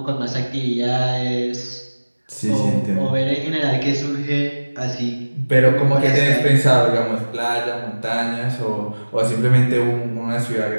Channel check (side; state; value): both; inverted; correlation -1.00